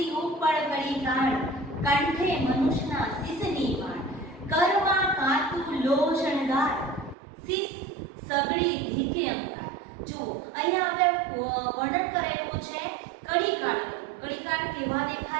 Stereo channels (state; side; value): drops out; left; at 7.2 s